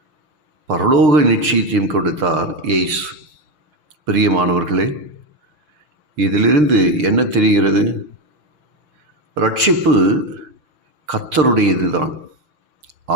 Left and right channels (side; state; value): left; late; 6.7 ms